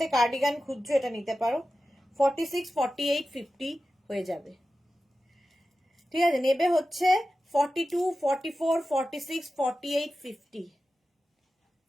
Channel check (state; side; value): normal; both; correlation 0.93